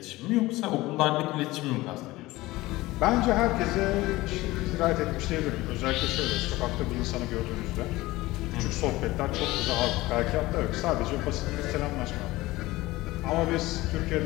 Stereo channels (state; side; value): quieter; right; 19.0 dB